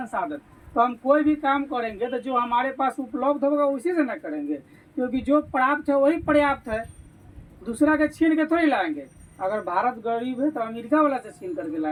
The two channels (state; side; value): identical; both; correlation 1.00